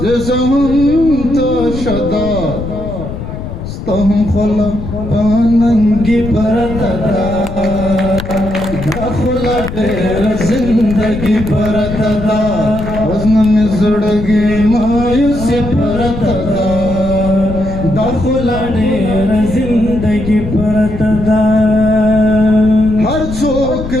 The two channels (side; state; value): left; noise; rumble, 8 dB below the sound